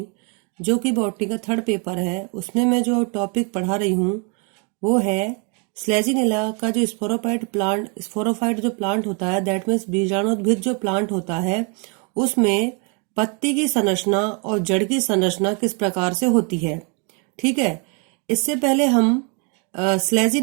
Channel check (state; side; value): quieter; left; 35.6 dB